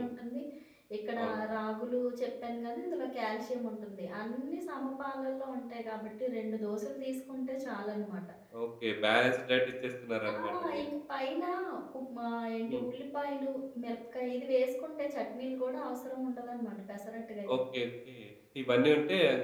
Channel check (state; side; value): identical; both; correlation 1.00